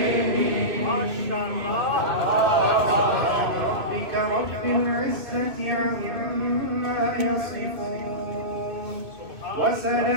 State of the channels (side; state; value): left; late; 2.5 ms